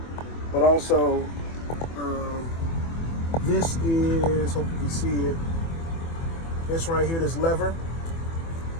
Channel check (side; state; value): right; late; 24 ms